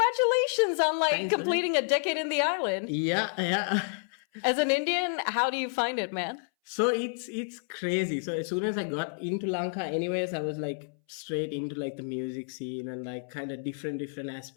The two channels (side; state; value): right; silent; 58 dB below the other